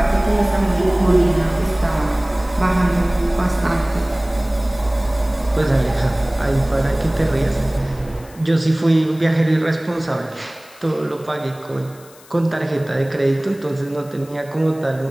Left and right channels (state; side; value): noise; left; hiss, 24 dB below the sound